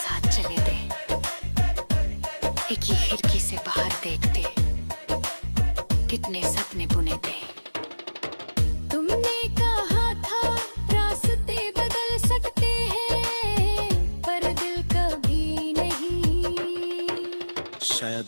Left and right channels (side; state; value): both; inverted; correlation -1.00